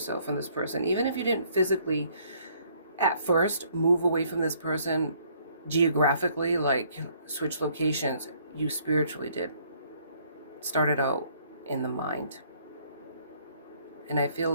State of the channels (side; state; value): both; inverted; correlation -0.63